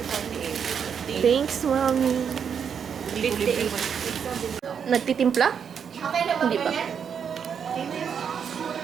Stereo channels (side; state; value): left; quieter; 7.3 dB